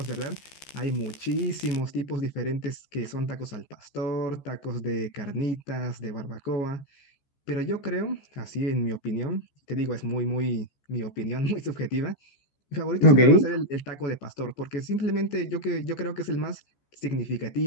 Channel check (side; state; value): right; late; 14 ms